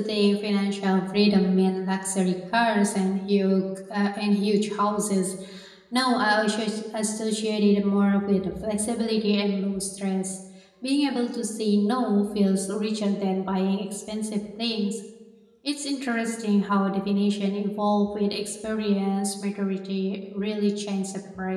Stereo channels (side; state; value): both; identical; correlation 1.00